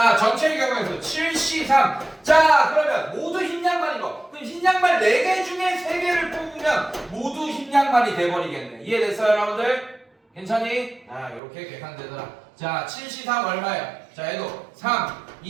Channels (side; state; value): left; drops out; at 11.4 s